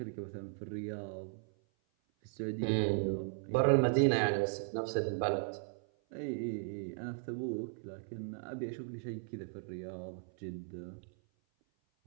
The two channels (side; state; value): left; silent; 53 dB below the other